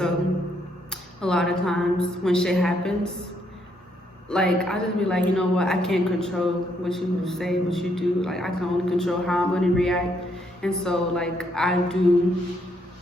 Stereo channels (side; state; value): both; normal; correlation 0.73